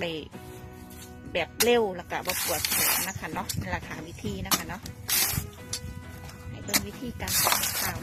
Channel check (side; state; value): both; identical; correlation 1.00